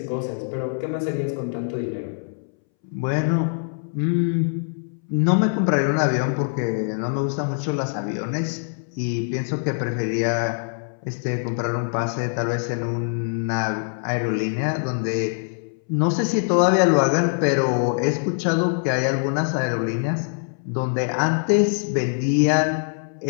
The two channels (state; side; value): silent; right; 63 dB below the other